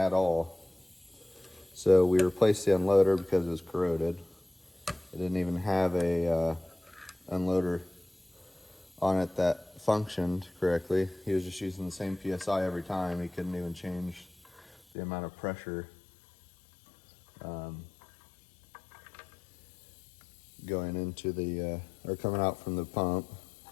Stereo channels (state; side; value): drops out; right; at 14.8 s